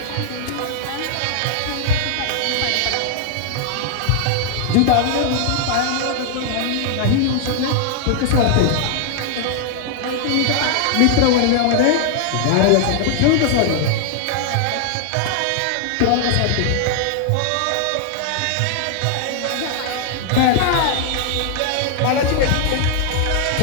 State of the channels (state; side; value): different; both; correlation 0.00